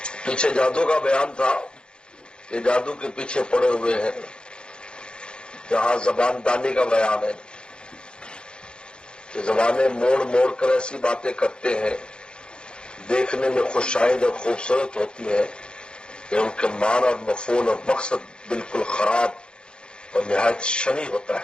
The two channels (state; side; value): late; right; 0.051 ms